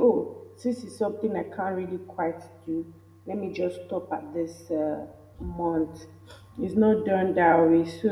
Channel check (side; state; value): both; identical; correlation 1.00